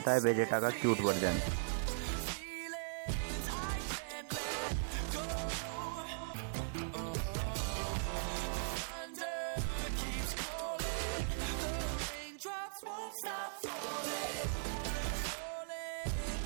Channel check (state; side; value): silent; left; digital silence